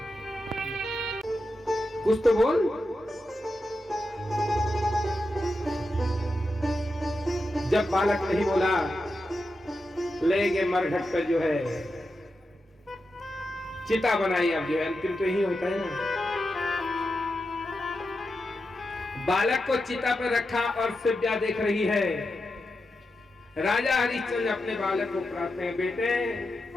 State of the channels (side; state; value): both; normal; correlation 0.88